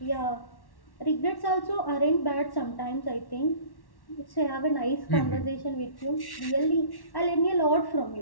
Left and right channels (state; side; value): late; right; 1.1 ms